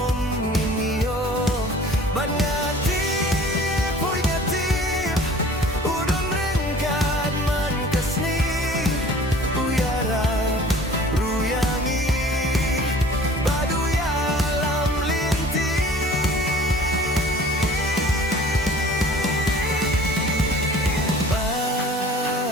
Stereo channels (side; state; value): both; normal; correlation 0.48